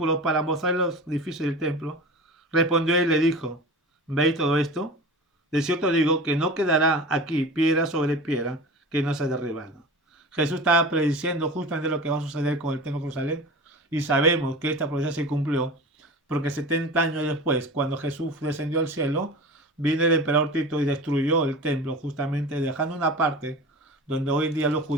para mostrar los edificios del templo, respondió y le dijo, ¿veis todo esto? De cierto digo que no quedará aquí piedra sobre piedra que no sea derribada. Jesús estaba prediciendo justamente lo que va a suceder con el templo de Jerusalén y sabemos que esta profecía se cumplió porque 70 años después, cuando Jesús descendió al cielo, vino el emperador Tito y destruyó el templo justamente dejando una parte donde hoy en día los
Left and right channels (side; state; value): both; normal; correlation 0.33